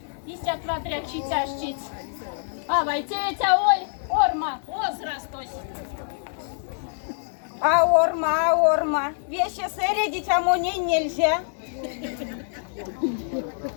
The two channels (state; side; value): silent; right; 61 dB below the other